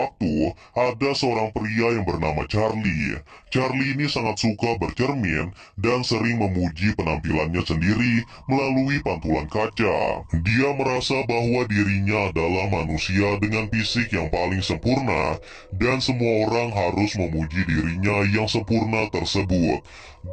ada seorang pria yang bernama Charlie. Charlie ini sangat suka bercermin dan sering memuji penampilannya sendiri melalui pantulan kaca. Dia merasa bahwa dirinya adalah manusia dengan fisik yang paling sempurna, dan semua orang harus memuji dirinya yang sempurna tersebut.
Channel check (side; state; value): both; identical; correlation 1.00